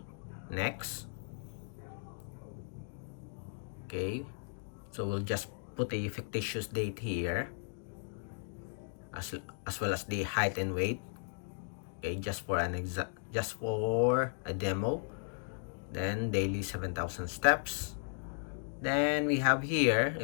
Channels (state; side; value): silent; right; digital silence